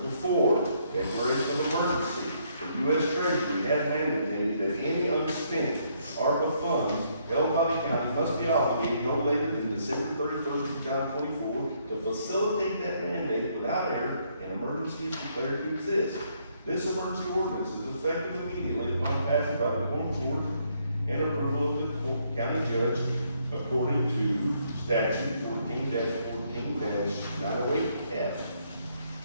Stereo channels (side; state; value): both; inverted; correlation -0.71